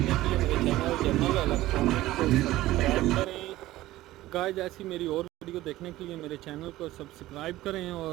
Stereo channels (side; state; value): left; quieter; 16.3 dB